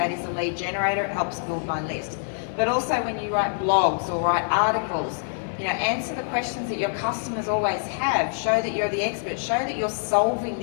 is a lead generator. It helps build my list. But also when you write blogs or write articles, answer the questions that your customers always have. Show that you're the expert. Show that you're solving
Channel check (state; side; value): silent; right; digital silence